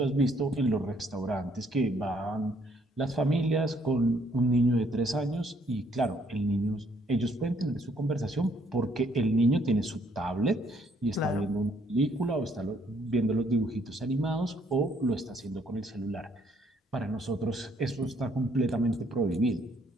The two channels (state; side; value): normal; both; correlation 0.67